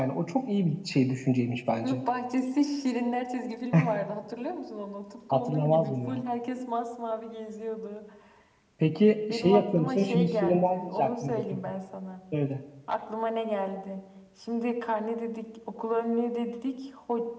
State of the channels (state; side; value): identical; both; correlation 1.00